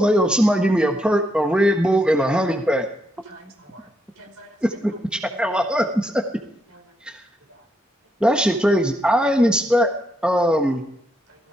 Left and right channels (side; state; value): both; normal; correlation 0.78